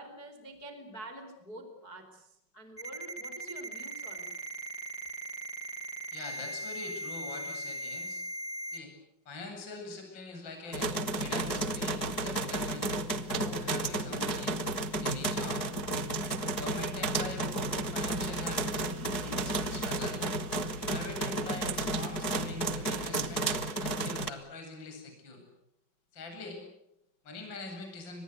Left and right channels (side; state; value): right; late; 5.3 ms